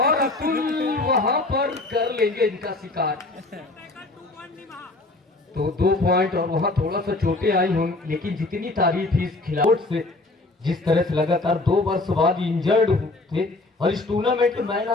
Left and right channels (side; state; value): right; quieter; 3.0 dB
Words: अतुल वहां पर कर लेंगे इनका शिकार। तो 2 पॉइंट, और वहां थोड़ा सा चोटें आई होंगी, लेकिन जितनी तारीफ इस खिलाड़ी से, जिस तरह से लगातार 2 वर्ष बाद इंजर्ड थे और इस टूर्नामेंट के मैन